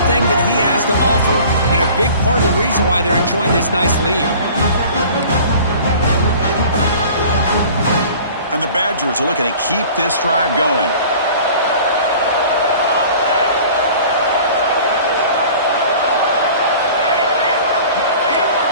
that he has to offer, and a big part of the reason why they're enjoying this nice lead. And the Badgers are looking to keep this drive going.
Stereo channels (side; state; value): both; inverted; correlation -0.45